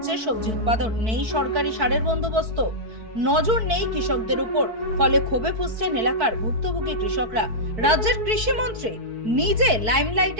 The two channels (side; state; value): left; late; 4.5 ms